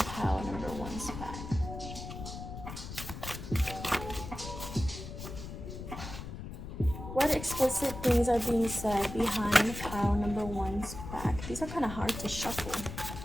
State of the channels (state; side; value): noise; left; rumble, 9 dB below the sound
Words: number one's back? What explicit things are being said behind pile number one's back? These are kind of hard to shuffle.